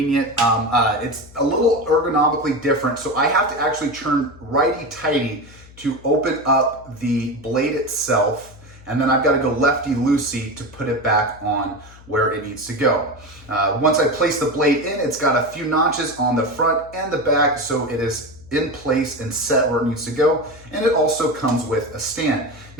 It's a little ergonomically different, so I have to actually turn righty-tighty to open up the blade itself, and then I've got to go lefty-loosey to put it back on where it needs to go. Once I place the blade in, it's got a few notches on the front and the back, so it is in place and set where it needs to go, and it also comes with a stand.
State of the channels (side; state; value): left; noise; hum, 22 dB below the sound